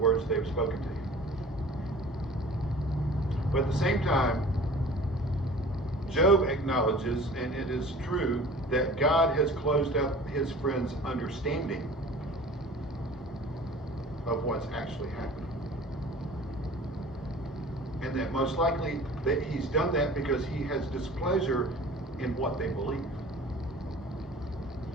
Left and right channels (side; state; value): both; normal; correlation 0.44